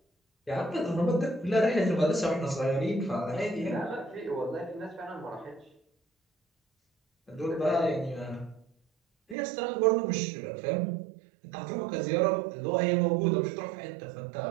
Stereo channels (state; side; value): drops out; left; at 9.3 s